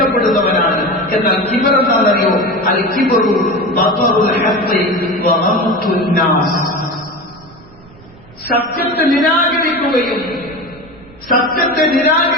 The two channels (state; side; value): noise; right; rumble, 24 dB below the sound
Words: എന്നാൽ കിബർ എന്താണെന്നറിയോ? അൽ കിബ്റു ബതറുൽ ഹഖ് വ ഗംതുൻ നാസ്, സത്യത്തെ നിരാകരിക്കുകയും സത്യത്തെ